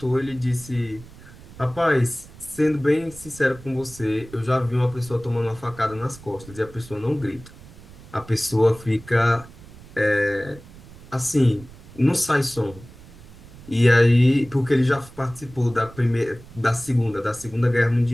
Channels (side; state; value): right; noise; rumble, 20 dB below the sound